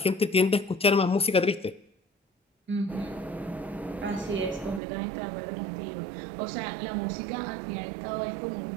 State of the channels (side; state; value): left; drops out; at 4.8 s